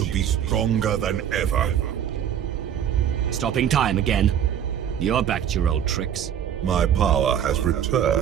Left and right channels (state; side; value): quieter; left; 9.4 dB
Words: be stronger than ever. Stopping time again. You're back to your old tricks. My power has